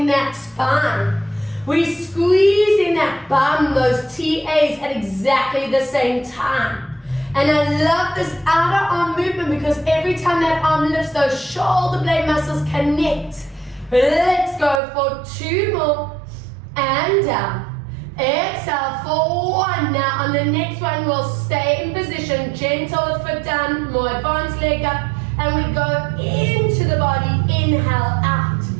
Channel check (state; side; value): drops out; left; at 14.8 s